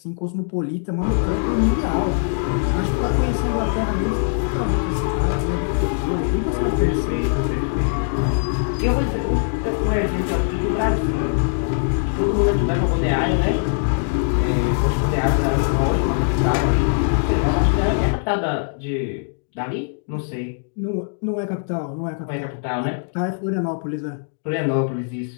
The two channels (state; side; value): silent; right; digital silence